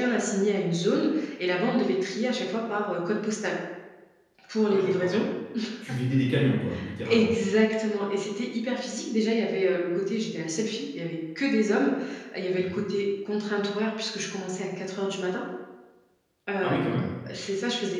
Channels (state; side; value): identical; both; correlation 1.00